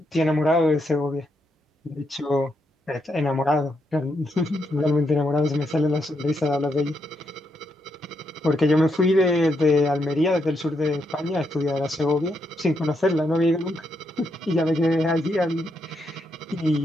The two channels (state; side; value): normal; both; correlation 0.80